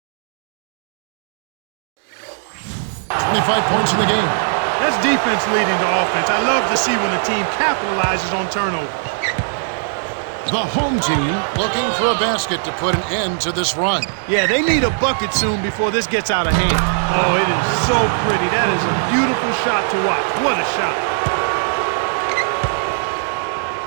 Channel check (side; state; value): left; silent; digital silence